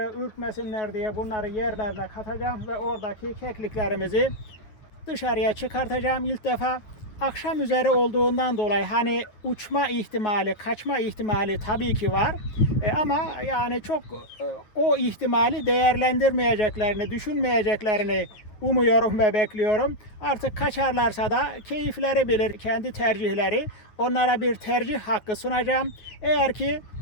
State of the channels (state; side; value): late; right; 9.2 ms